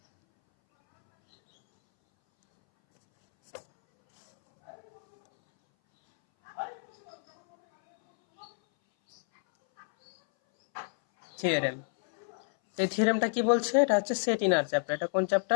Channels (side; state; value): right; silent; 58 dB below the other